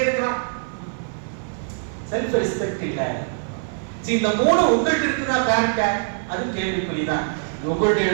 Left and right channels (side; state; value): left; silent; 62 dB below the other